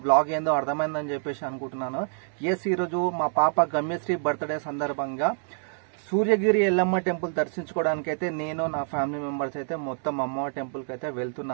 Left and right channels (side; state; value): left; silent; 60 dB below the other